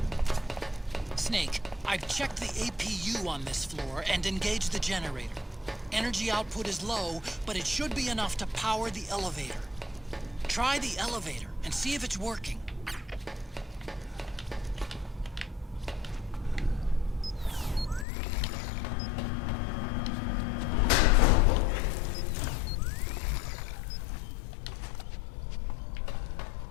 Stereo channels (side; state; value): right; drops out; at 18.1 s